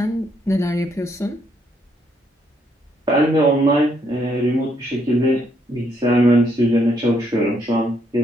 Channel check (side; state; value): both; normal; correlation 0.73